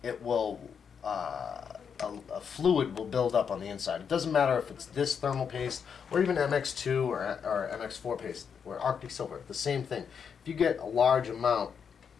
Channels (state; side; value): quieter; right; 6.9 dB